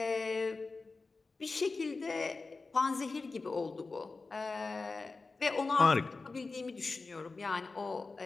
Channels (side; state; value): right; quieter; 3.9 dB